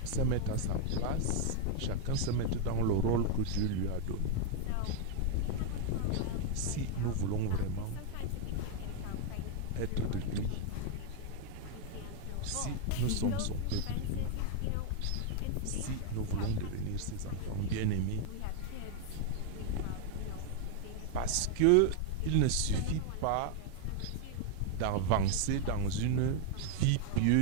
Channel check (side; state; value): both; different; correlation 0.00